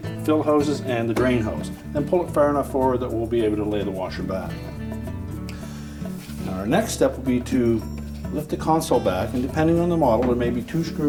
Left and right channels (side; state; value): both; identical; correlation 1.00